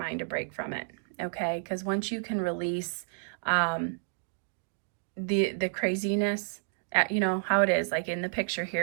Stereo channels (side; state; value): left; silent; digital silence